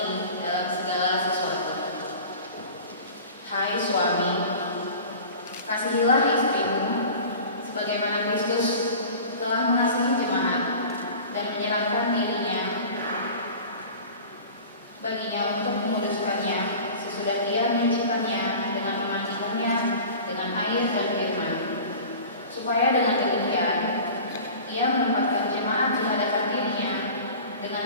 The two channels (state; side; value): inverted; both; correlation -0.39